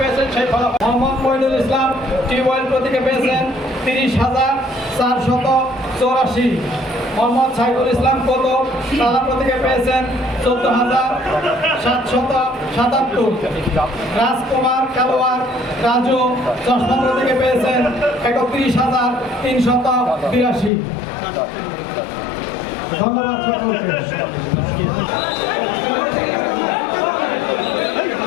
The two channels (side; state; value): right; drops out; at 20.7 s